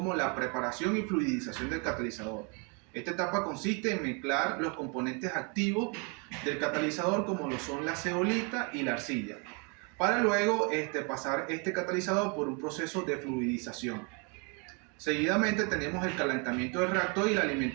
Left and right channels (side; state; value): left; quieter; 33.9 dB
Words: la preparación y fluidización del catalizador. Esta etapa consiste en mezclar los componentes activos del catalizador como lo son la zeolita y la arcilla, para luego pasar este catalizador por un proceso de fluidización. Seguidamente tenemos el calentamiento del reactor y la